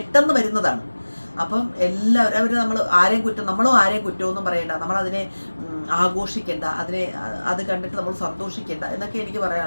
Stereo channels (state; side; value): inverted; both; correlation -1.00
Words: വരുന്നതാണ്. അപ്പം എല്ലാവരും നമ്മളും ആരെയും കുറ്റമൊന്നും പറയണ്ട. നമ്മളതിനെ ആഘോഷിക്കേണ്ട, അത് കണ്ടിട്ട് നമ്മൾ സന്തോഷിക്കേണ്ട എന്നൊക്കെ എനിക്ക്